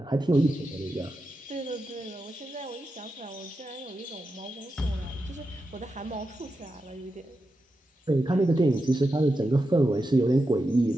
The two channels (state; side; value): normal; both; correlation 0.89